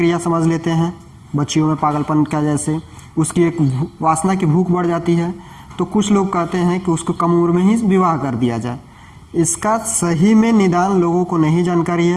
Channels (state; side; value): identical; both; correlation 1.00